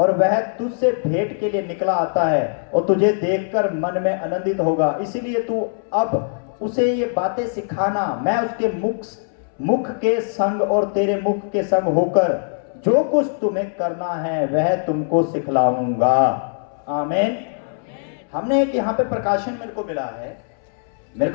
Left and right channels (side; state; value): right; silent; 65 dB below the other